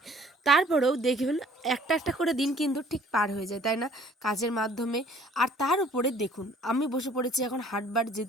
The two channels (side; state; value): both; normal; correlation 0.55